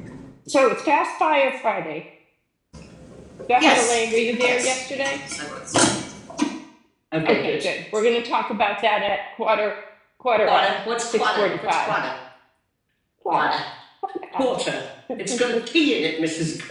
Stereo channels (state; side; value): identical; both; correlation 1.00